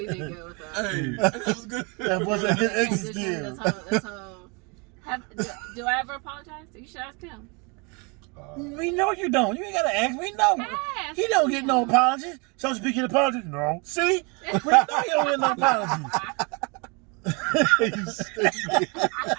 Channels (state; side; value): quieter; left; 30.8 dB